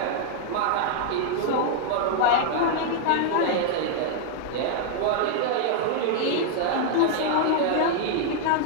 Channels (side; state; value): both; different; correlation 0.00